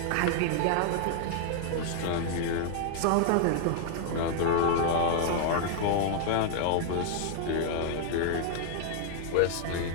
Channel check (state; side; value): different; both; correlation 0.00